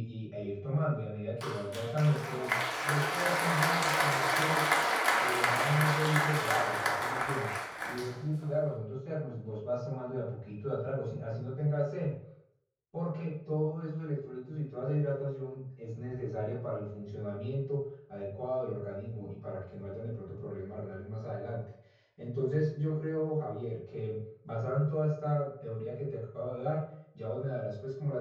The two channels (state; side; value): identical; both; correlation 1.00